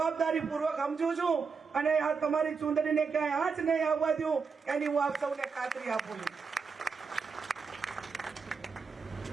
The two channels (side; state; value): left; quieter; 5.3 dB